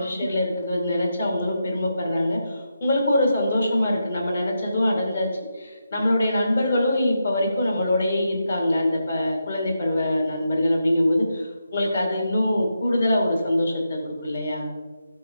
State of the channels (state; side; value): inverted; both; correlation -0.85